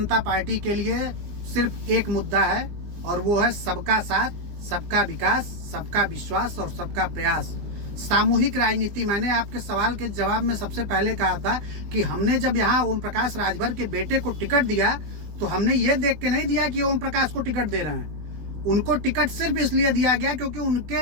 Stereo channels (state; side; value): late; left; 20 ms